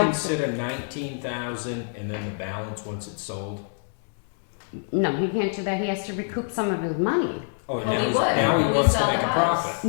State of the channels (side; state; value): right; silent; digital silence